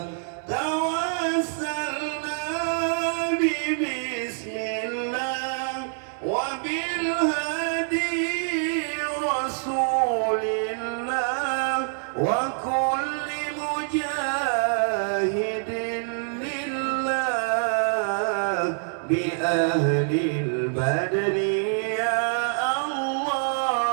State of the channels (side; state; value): left; silent; digital silence